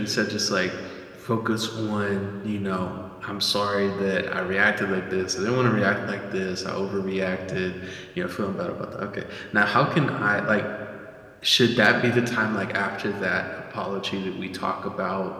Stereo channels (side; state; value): both; identical; correlation 1.00